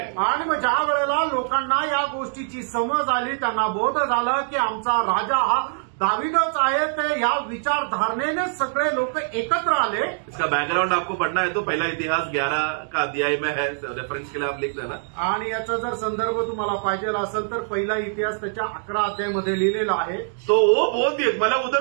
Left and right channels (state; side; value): silent; left; digital silence